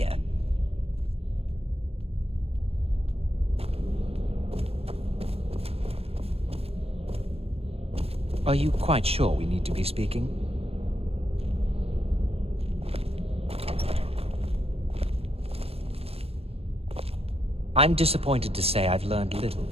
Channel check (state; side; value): late; left; 0.29 ms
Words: Are you quite sure we need to be speaking? I'm disappointed to say I've learned little